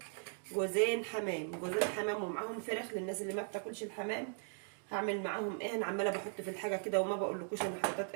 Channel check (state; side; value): silent; left; 52 dB below the other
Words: جوزين حمام، جوزين حمام ومعاهم فراخ للناس اللي ما بتاكلش الحمام. هعمل معاهم ايه؟ انا عماله بحط في الحاجه كده وما بقولكوش انا حطيت